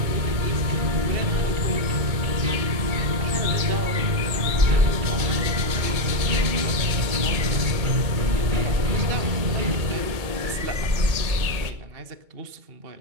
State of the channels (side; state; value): left; late; 2.2 ms